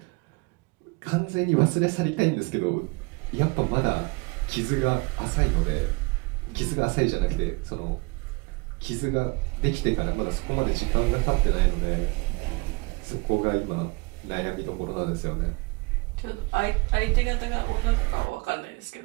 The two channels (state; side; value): quieter; left; 27.5 dB